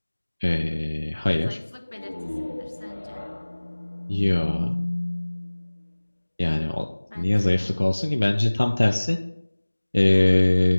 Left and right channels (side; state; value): both; inverted; correlation -1.00